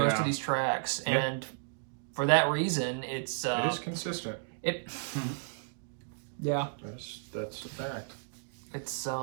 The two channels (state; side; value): silent; left; digital silence